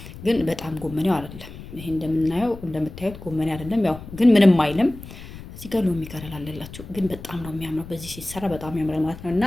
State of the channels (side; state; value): left; noise; rumble, 14 dB below the sound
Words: ግን በጣም ጎመኔው አይደለም። ይሄ እንደምታዩት ጎመኔ አይደለም። ያው ግን ምንም አይልም። እዚህ ጋር ሎሚ ከለር አለላችሁ፣ ግን በጣም ነው የሚያምረው። በዚህ ሲሰራ በጣም ያምራል ማለት ነው። እና